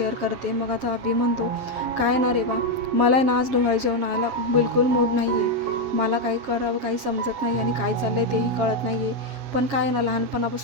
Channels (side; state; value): left; late; 7.3 ms